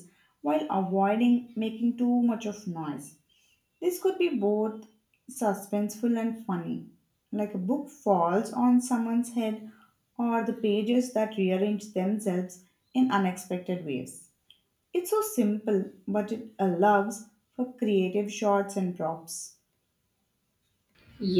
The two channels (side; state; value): both; identical; correlation 1.00